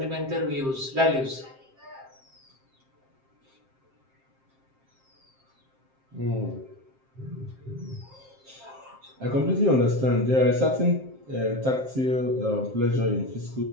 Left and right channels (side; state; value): left; late; 7.6 ms